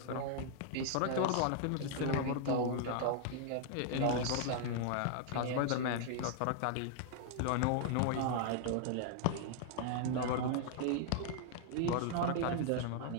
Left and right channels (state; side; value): different; both; correlation 0.00